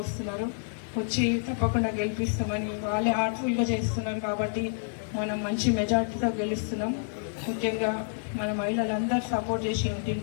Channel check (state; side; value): silent; right; 59 dB below the other